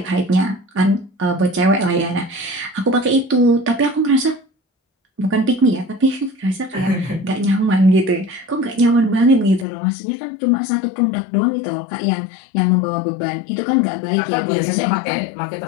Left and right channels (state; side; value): drops out; right; at 9.7 s